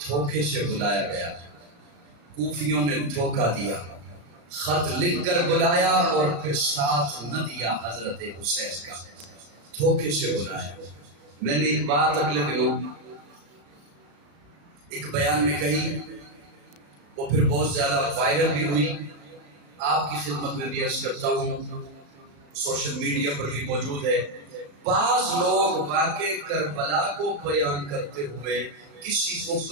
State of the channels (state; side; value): late; left; 35 ms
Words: دھوکے سے بلایا گیا، کوفیوں نے دھوکہ دیا، خط لکھ کر بلایا اور پھر ساتھ نہ دیا حضرت حسین کا، دھوکے سے بلایا۔ میں نے ایک بات اگلے دنوں ایک بیان میں کہی، وہ پھر بہت زیادہ وائرل بھی ہوئی، آپ کی خدمت میں بھی عرض کرتا ہوں، سوشل میڈیا پر بھی موجود ہے۔ بعض لوگ واقع کربلا کو بیان کرتے ہوئے کسی کو